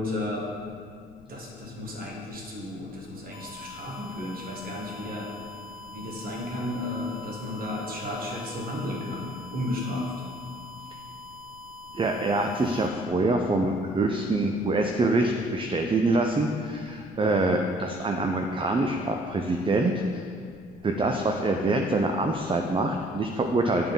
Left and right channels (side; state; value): left; noise; rumble, 23 dB below the sound